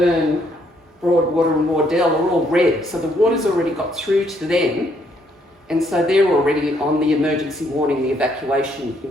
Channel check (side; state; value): both; normal; correlation 0.70